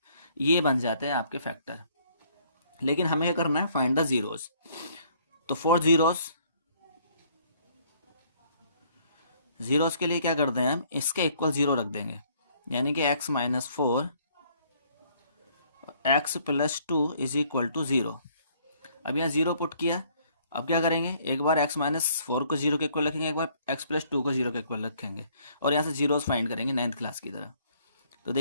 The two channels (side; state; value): both; inverted; correlation -0.63